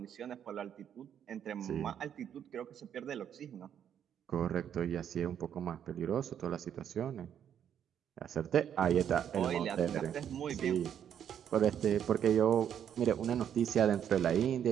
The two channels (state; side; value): quieter; left; 9.2 dB